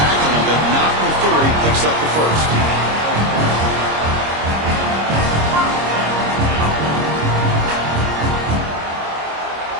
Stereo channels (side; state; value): left; late; 26 ms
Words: him, but not before he picks up the first.